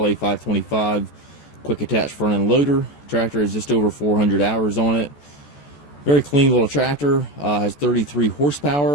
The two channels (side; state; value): right; late; 14 ms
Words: quick attach front end loader. Tractor has just over 400 hours on it. Very clean little tractor. Has 33